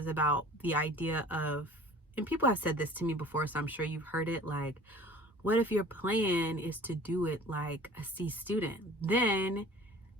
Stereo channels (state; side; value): normal; both; correlation 0.46